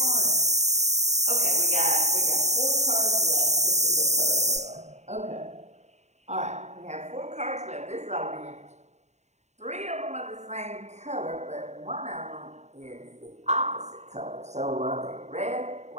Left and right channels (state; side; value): late; left; 0.33 ms